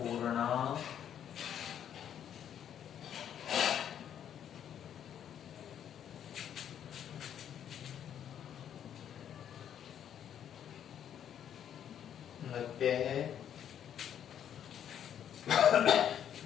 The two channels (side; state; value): right; quieter; 9.5 dB